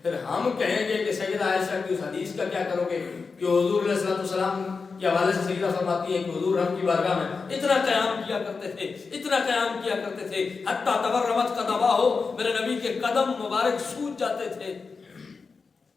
پھر ہم کہیں گے کہ سیدہ عائشہ کی اس حدیث کا کیا کرو گے کہ حضور علیہ السلام کے حوالے سے سیدہ فرماتی ہیں کہ حضور رب کی بارگاہ میں اتنا قیام کیا کرتے تھے، اتنا قیام کیا کرتے تھے، حتیٰ تورمت قدماہ، میرے نبی کے قدم مبارک سوج جاتے تھے.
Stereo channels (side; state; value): right; quieter; 4.7 dB